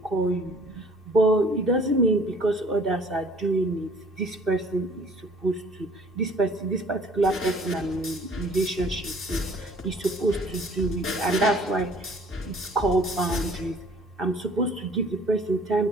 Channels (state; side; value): normal; both; correlation 0.53